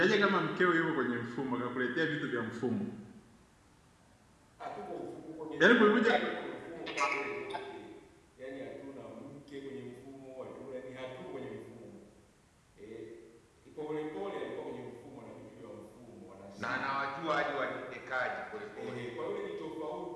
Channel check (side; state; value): both; identical; correlation 1.00